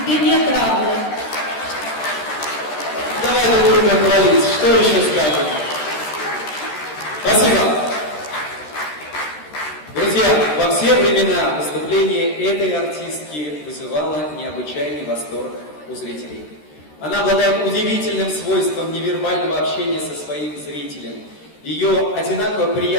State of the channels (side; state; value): right; late; 13 ms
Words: нет равных. Давай друг друга хвалить. Что еще скажем? Спасибо. Друзья, во все времена выступление этой артистки вызывало необычайный восторг у зрителей. Она обладает удивительным свойством невербального общения со своим зрителем. Ее одинаково